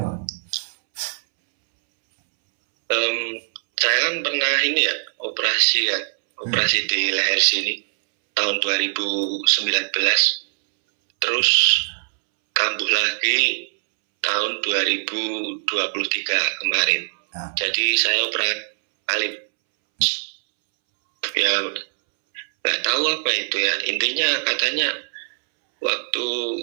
Saya kan pernah ini ya, operasi di leher sini tahun 2019. Terus kambuh lagi tahun 2023 kemarin. Jadi saya operasi alip. Ya nggak tahu apa itu ya. Intinya katanya waktu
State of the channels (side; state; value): left; silent; 64 dB below the other